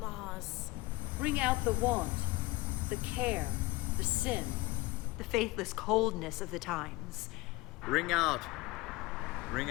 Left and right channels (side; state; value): right; quieter; 21.2 dB